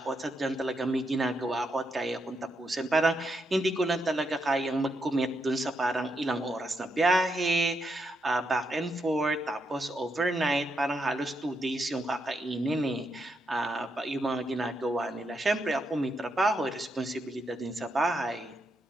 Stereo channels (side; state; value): both; normal; correlation 0.81